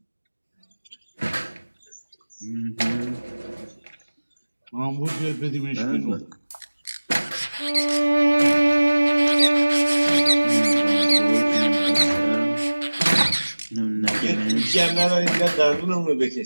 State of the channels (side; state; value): both; inverted; correlation -1.00